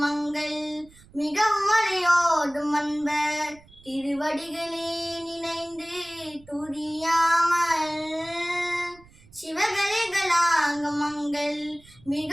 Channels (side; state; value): right; noise; rumble, 25 dB below the sound